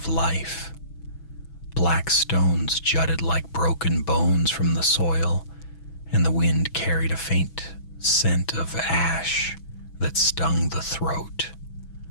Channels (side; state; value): right; late; 6.1 ms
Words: life. Black stones jutted like broken bones from the soil, and the wind carried a faint scent of ash that stung the throat.